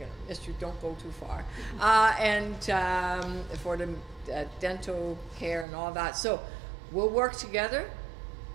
Mr. Don't go too far. And for the dental care and all that. So we'll work together.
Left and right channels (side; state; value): left; drops out; at 5.7 s